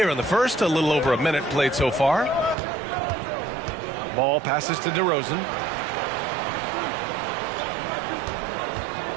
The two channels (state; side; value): drops out; left; at 2.6 s